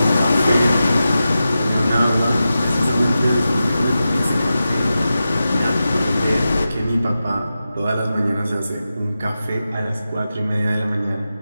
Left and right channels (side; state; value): both; inverted; correlation -0.92